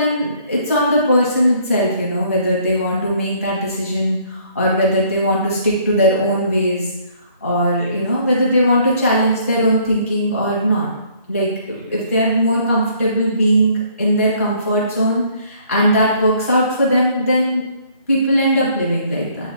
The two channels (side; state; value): both; inverted; correlation -0.62